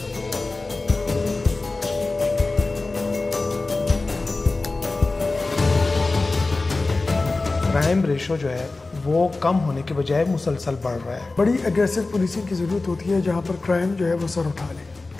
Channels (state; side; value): quieter; right; 3.4 dB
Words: क्राइम रेशो जो है वो कम होने के बजाय मुसलसल बढ़ रहा है। बड़ी एग्रेसिव पुलिसिंग की ज़रूरत होती है जहाँ पर क्राइम जो है वो सर उठा ले।